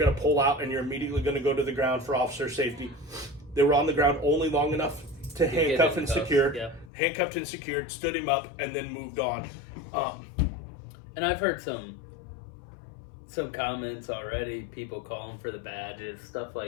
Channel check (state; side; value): drops out; right; at 6.9 s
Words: to pull out and you're immediately going to go to the ground for officer safety. They were on the ground only long enough to handcuff and secure. Yeah. Handcuffed and secured, stood him up, and then moved on. And I've heard some comments already, people calling for the badges, stuff